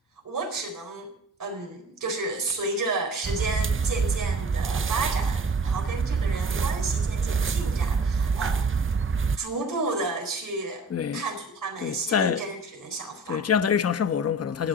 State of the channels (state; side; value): normal; both; correlation 0.42